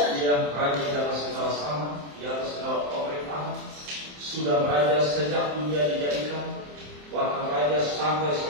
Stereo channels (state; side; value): late; left; 27 ms